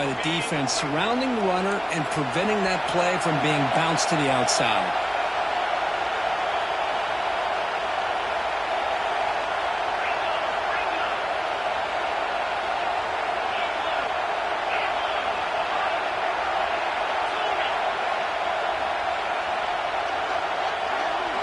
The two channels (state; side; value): identical; both; correlation 1.00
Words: the defense surrounding the runner and preventing that play from being bounced to the outside.